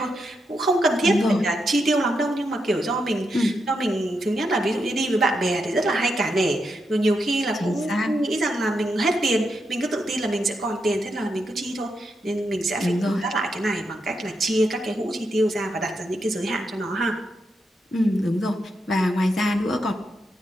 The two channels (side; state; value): both; normal; correlation 0.83